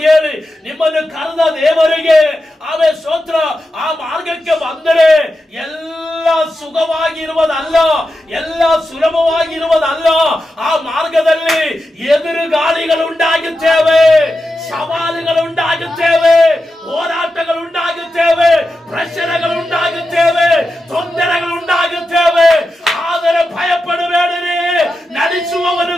ಹೇಳಿ ನಿಮ್ಮನ್ನು ಕರೆದ ದೇವರಿಗೆ ಆಮೇಲೆ ಸ್ತೋತ್ರ. ಆ ಮಾರ್ಗಕ್ಕೆ ಬಂದರೆ ಎಲ್ಲ ಸುಖವಾಗಿರುವುದಲ್ಲ, ಎಲ್ಲ ಸುಲಭವಾಗಿರುವುದಲ್ಲ. ಆ ಮಾರ್ಗದಲ್ಲಿ ಎದುರು ಗಾಳಿಗಳುಂಟಾಗುತ್ತೇವೆ, ಸವಾಲುಗಳುಂಟಾಗುತ್ತೇವೆ, ಹೋರಾಟಗಳುಂಟಾಗುತ್ತೇವೆ, ಪ್ರಶ್ನೆಗಳುಂಟಾಗುತ್ತೇವೆ, ತೊಂದರೆಗಳುಂಟಾಗುತ್ತೇವೆ. ಆದರೆ ಭಯಪಡಬೇಡಿರಿ, ನಡೆಸುವವನು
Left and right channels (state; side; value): normal; both; correlation 0.90